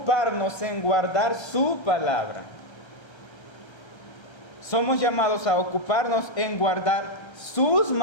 en guardar su palabra. Somos llamados a ocuparnos en guardar sus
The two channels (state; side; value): late; right; 1.3 ms